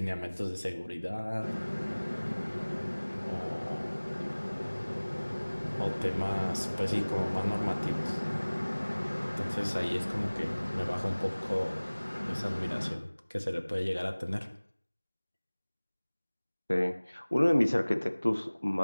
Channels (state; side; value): inverted; both; correlation -1.00